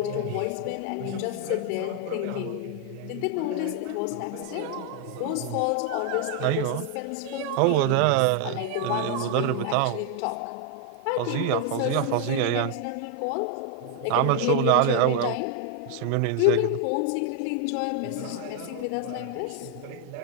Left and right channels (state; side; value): different; both; correlation 0.00